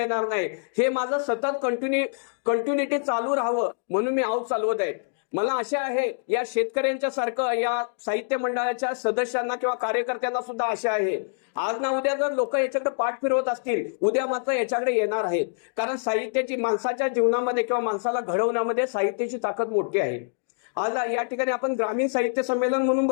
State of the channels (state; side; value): silent; right; digital silence